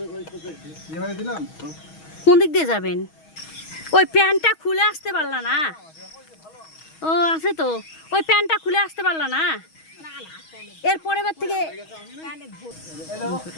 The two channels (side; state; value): right; late; 6.3 ms